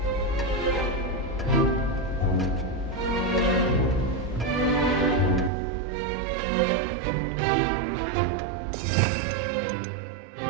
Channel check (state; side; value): drops out; left; at 5.5 s